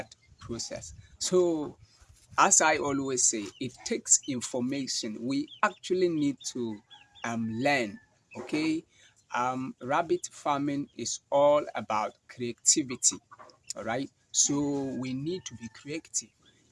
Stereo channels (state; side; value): identical; both; correlation 1.00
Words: process. So as I always say, it takes information. We actually need to learn. Okay, rabbit farming is all about creativity. All right, so we need to be creative.